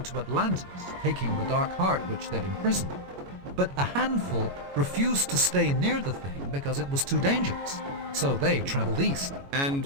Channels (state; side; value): late; left; 22 ms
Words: to Atlantis, taking the Dark Heart which they'd imprisoned. But a handful refused to stay near the thing because it was too dangerous. So they traveled east. And